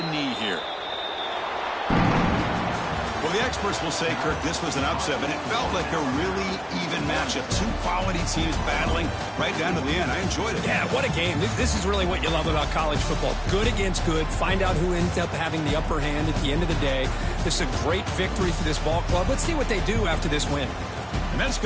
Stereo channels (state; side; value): identical; both; correlation 1.00